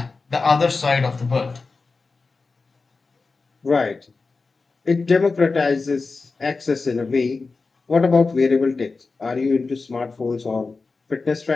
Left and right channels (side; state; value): right; quieter; 4.1 dB